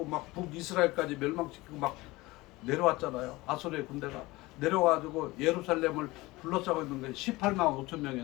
막 북이스라엘까지 멸망시키고 막 내려왔잖아요. 아수르의 군대가 내려와가지고 예루살렘을 둘러싸고 있는 게 18만 5천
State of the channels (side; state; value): right; quieter; 20.7 dB